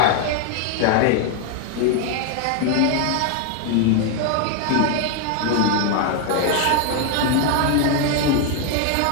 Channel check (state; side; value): different; both; correlation 0.01